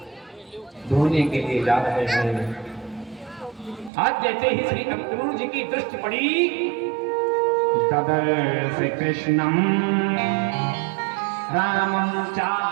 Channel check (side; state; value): left; drops out; at 3.9 s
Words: धोने के लिए जा रहे हैं। आज जैसे ही श्री अक्रूर जी की दृष्टि पड़ी, तदर्श कृष्णम रामं चा